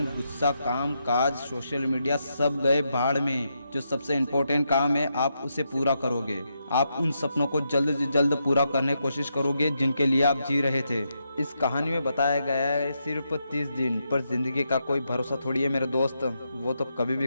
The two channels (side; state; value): both; inverted; correlation -0.82